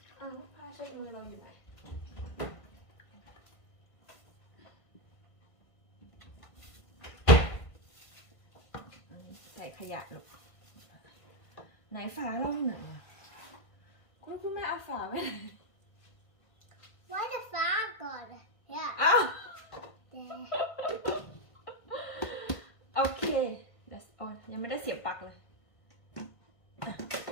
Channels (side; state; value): right; late; 1.5 ms